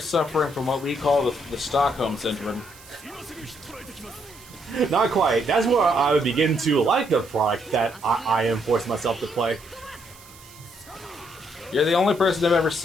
from what we call the Stockholm Syndrome. Not quite. That's where I would begin to like the product that I am forcing myself to play. You're the only person I've ever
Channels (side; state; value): right; noise; hiss, 22 dB below the sound